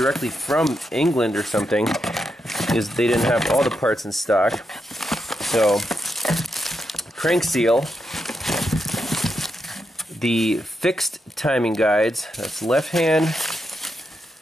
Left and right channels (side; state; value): both; normal; correlation 0.84